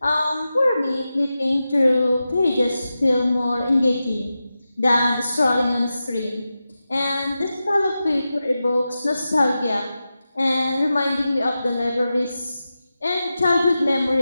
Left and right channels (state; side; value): inverted; both; correlation -0.92